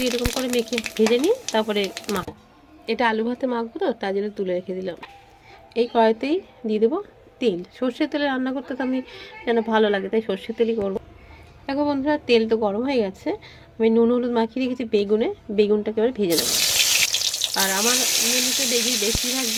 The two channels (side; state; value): both; identical; correlation 1.00